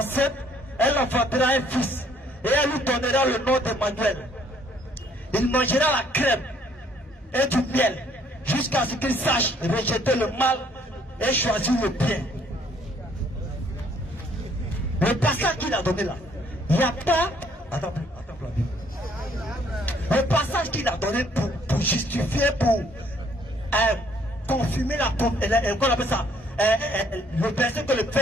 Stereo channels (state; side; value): normal; both; correlation 0.64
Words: elle enfantera un fils, et elle lui donnera le nom d'Emmanuel. Il mangera la crème et du miel, jusqu'à ce qu'il sache rejeter le mal et choisir le bien. Le passage qu'il a donné là, il n'y a pas... Attends, le passage qu'il a donné pour justifier, pour confirmer qu'on appelle ça, le verset que le